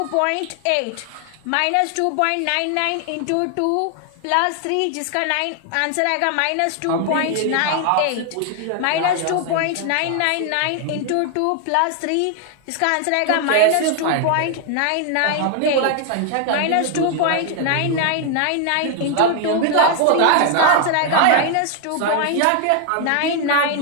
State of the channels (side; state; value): both; different; correlation 0.00